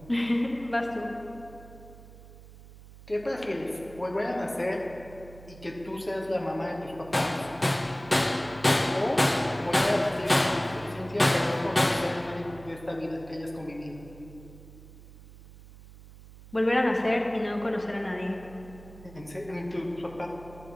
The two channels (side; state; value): right; noise; hum, 19 dB below the sound